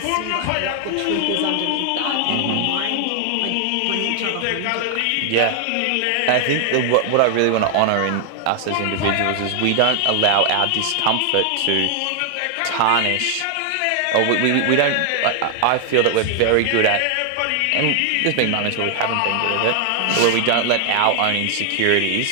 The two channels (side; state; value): both; different; correlation 0.00